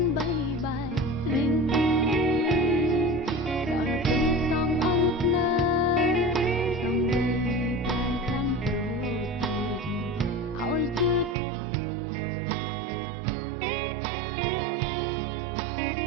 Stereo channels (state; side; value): drops out; left; at 11.4 s